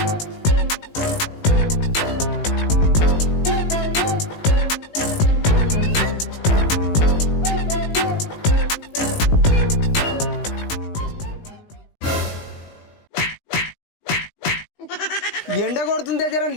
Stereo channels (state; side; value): late; right; 18 ms